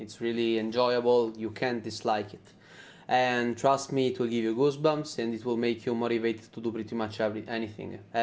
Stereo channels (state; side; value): identical; both; correlation 1.00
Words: really enjoyable. You can't dislike it. And trust me, it will give you goosebumps and it will make you motivated to do pretty much anything